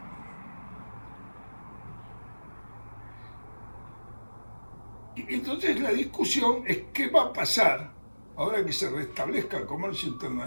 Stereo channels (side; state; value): both; inverted; correlation -1.00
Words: Y entonces la discusión es qué va a pasar ahora que se restablezca el comercio